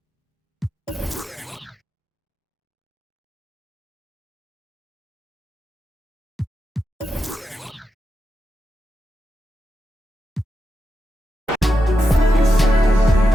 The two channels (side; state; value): both; normal; correlation 0.87